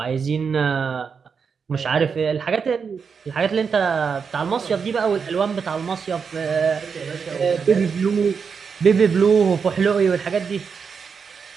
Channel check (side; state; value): left; quieter; 6.0 dB